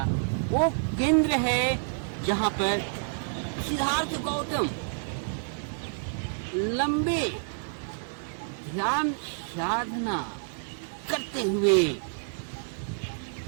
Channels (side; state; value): left; silent; digital silence